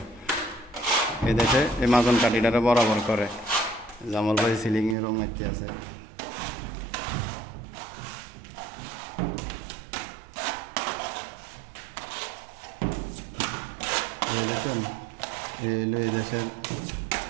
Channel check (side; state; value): left; drops out; at 5.0 s